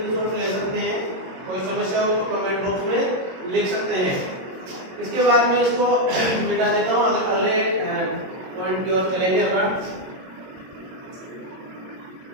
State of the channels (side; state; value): left; late; 22 ms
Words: ले सकते हैं। कोई समस्या हो तो कमेंट बॉक्स में लिख सकते हैं। इसके बाद में इसको मिटा देता हूं, अगले पॉइंट की ओर चलेंगे अपन।